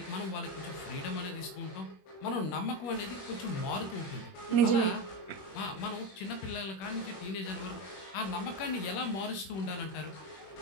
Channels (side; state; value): right; late; 21 ms